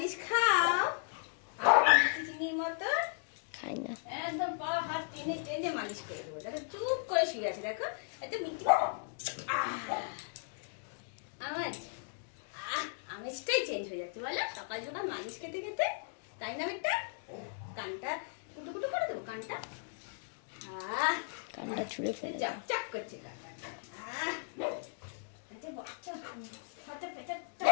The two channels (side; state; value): right; silent; digital silence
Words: খাও? মিষ্টি চিনির মতো খাই না, একদম পা হাত টেনে টেনে মালিশ করে দেবো। দেখো চুপ করে শুয়ে আছে, দেখো এটা মিষ্টি আওয়াজ, আমেজটাই চেঞ্জ হয়ে যাচ্ছে বলো সকাল সকাল মালিশ খেতে খেতে, তাই না? একটা কানটা কুটু কুটু করে দেবো, কানটা কানটা ছুঁড়ে ফেলে দাও। চাক করছে কানটা, বাচ্চা হাতে পেটে